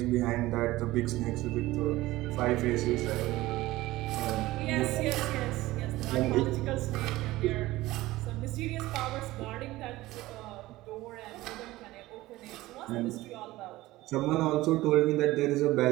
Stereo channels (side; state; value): left; quieter; 17.8 dB